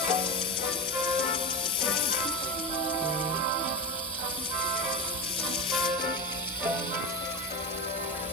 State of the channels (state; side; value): normal; both; correlation 0.19